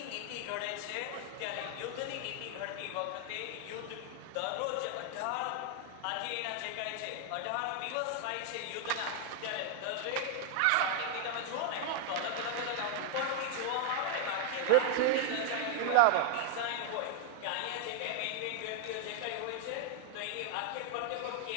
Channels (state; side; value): different; both; correlation 0.00